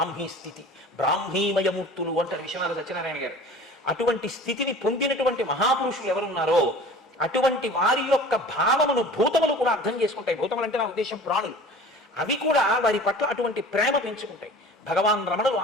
స్థితి, బ్రాహ్మీమయమూర్తులు అంటారు విశ్వనాథ సత్యనారాయణ గారు. అటువంటి స్థితిని పొందినటువంటి మహాపురుషులు ఎవరున్నారో అటువంటి వారి యొక్క భావమును భూతములు కూడా అర్థం చేసుకుంటాయి. భూతములు అంటే నా ఉద్దేశం ప్రాణులు. అవి కూడా వారి పట్ల అటువంటి ప్రేమ పెంచుకుంటాయి. భగవాన్ రమణులు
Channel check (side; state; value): both; normal; correlation 0.42